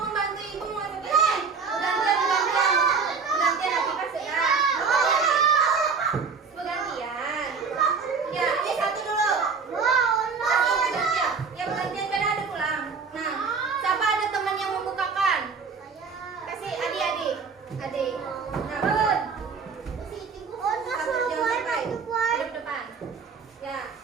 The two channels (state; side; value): quieter; left; 5.3 dB